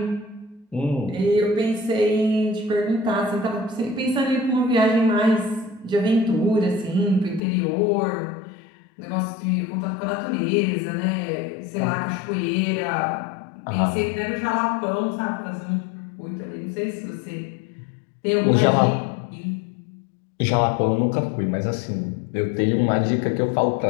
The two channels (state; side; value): drops out; right; at 7.4 s